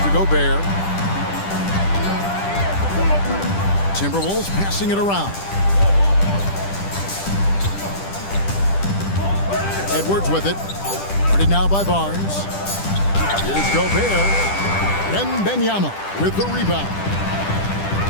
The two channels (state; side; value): late; right; 10 ms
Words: to Gobert. Timberwolves passing it around. Edwards with it. Guarded now by Barnes. Here's Gobert. Wembanyama with the rebound.